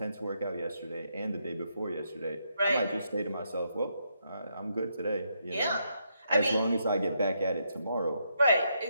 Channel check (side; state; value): both; inverted; correlation -0.78